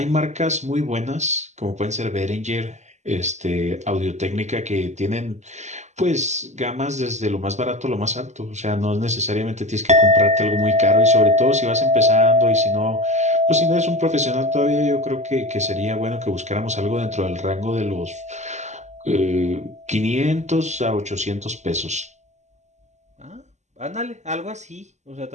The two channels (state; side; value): late; left; 0.33 ms